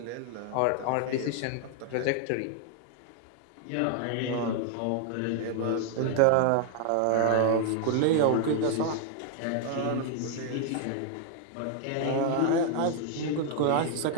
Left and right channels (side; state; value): both; different; correlation 0.00